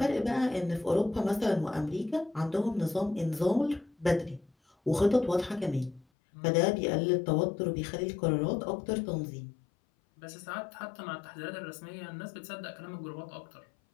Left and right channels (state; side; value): drops out; right; at 6.1 s